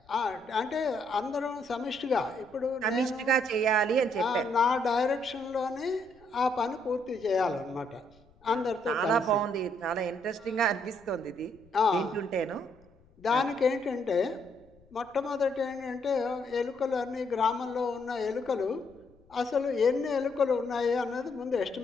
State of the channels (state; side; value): noise; left; rumble, 29 dB below the sound